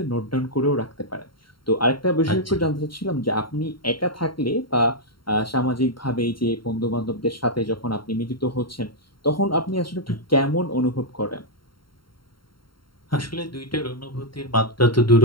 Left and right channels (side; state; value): right; late; 0.73 ms